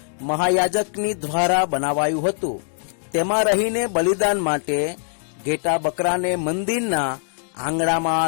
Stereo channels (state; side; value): silent; right; digital silence